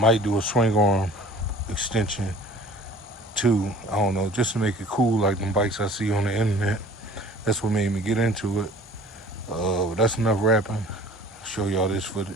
do a swing arm extension too. I don't know, just to make it cool like them bikes I see on the internet. That's what made me get into it. But that's enough rapping. I'll show y'all this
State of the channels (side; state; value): both; normal; correlation 0.48